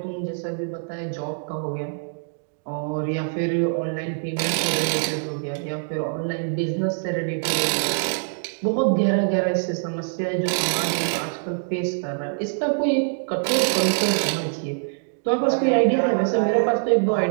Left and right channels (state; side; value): silent; left; digital silence